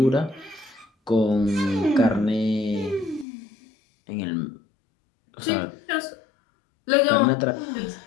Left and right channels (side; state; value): right; drops out; at 3.2 s